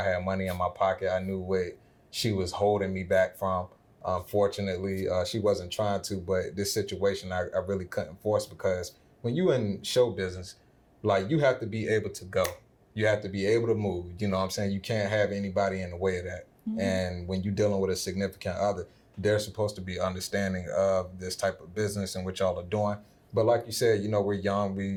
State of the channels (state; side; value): identical; both; correlation 1.00